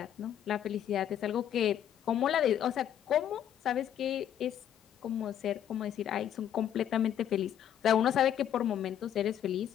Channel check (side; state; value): right; quieter; 10.0 dB